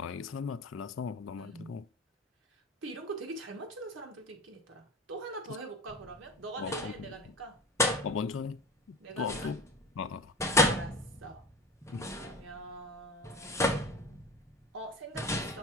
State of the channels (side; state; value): both; normal; correlation 0.32